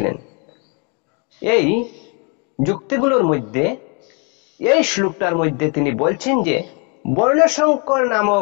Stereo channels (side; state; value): right; quieter; 34.8 dB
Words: এই যুক্তিগুলোর মধ্যে এই শ্লোকটার মধ্যে তিনি বলছেন যে বর্ণসংকর